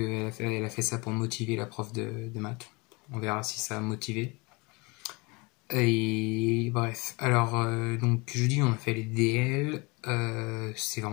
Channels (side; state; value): right; quieter; 27.0 dB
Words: a fait ça pour motiver la prof de maths. On verra si ça a motivé. Et bref, alors donc jeudi on a fait les DL, c'est